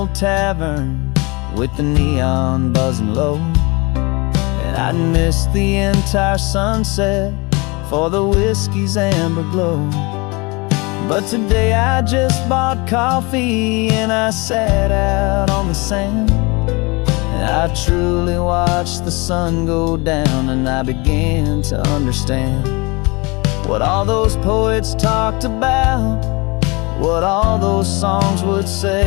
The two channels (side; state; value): right; quieter; 27.1 dB